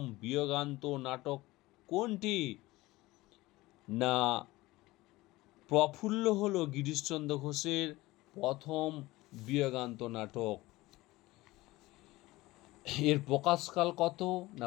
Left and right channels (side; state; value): right; quieter; 19.3 dB